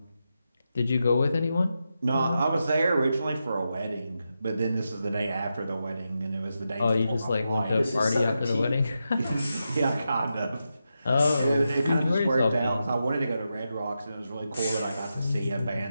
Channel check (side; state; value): both; inverted; correlation -0.88